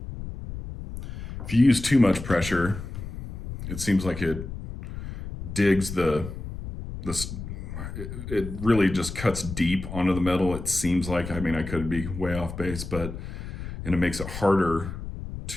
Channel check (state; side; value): noise; left; rumble, 9 dB below the sound